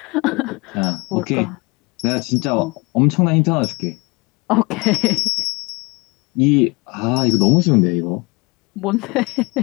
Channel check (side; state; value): right; quieter; 26.2 dB